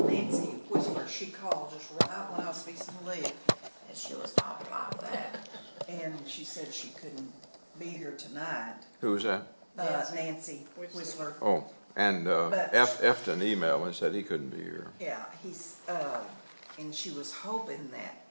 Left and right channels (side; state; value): both; inverted; correlation -1.00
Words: Nancy Whisper, she called just right when I was fixing to leave, and she was talking like that. And she said she couldn't be here tonight. Who was that? Nancy Whistler. Oh, and But- Efton emailed me and said he couldn't be here. Yeah, and she was hoping that,